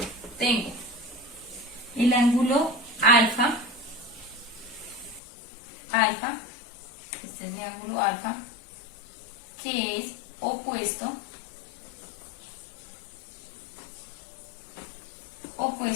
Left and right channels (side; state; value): right; drops out; at 5.2 s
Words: Tengo el ángulo alfa, este es mi ángulo alfa, que es opuesto